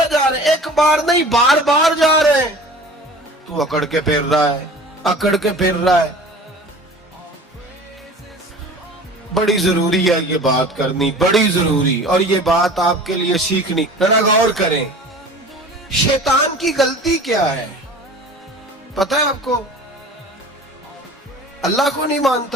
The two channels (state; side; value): normal; both; correlation 0.41